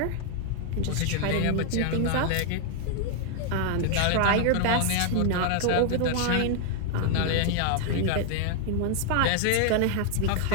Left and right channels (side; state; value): both; different; correlation 0.00